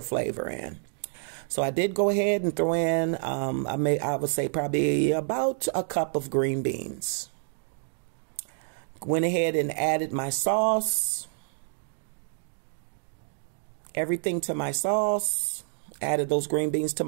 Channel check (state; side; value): silent; left; digital silence